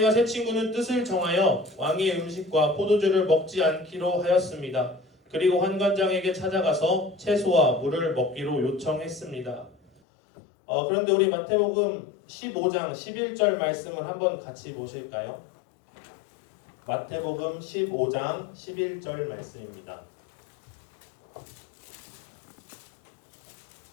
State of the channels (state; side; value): drops out; right; at 10.0 s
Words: 세 친구는 뜻을 정하여 왕의 음식과 포도주를 먹지 않기로 하였습니다. 그리고 환관장에게 찾아가서 채소와 물을 먹기로 요청했습니다. 그런데 우리 마태복음 15장 11절 말씀을 한번 같이 보실까요? 마태복음 15장 11절 말씀입니다.